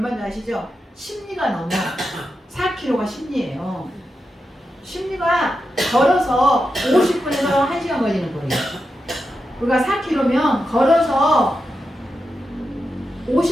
아시죠? 심리가 넘어. 4km가 심리예요. 심리가 걸어서 50분에서 1시간 걸리는 거예요. 우리가 4km면 걸어서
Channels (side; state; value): both; normal; correlation 0.88